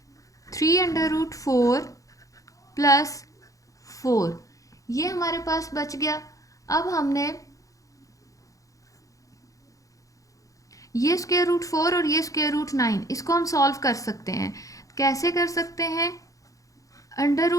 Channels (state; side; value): late; right; 0.16 ms